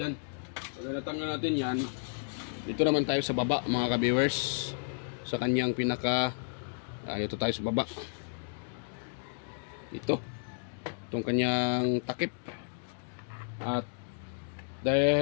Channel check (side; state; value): right; silent; digital silence